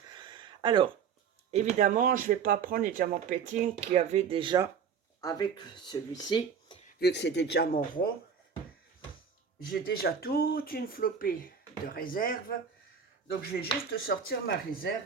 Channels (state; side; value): quieter; left; 6.7 dB